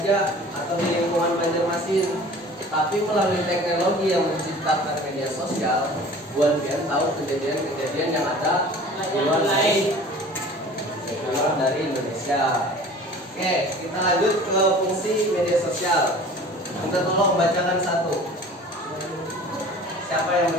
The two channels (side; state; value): both; normal; correlation 0.44